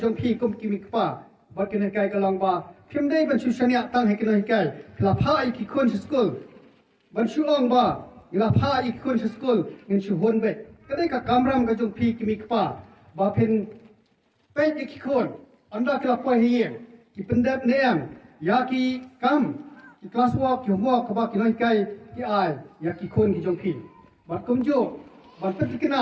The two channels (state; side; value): identical; both; correlation 1.00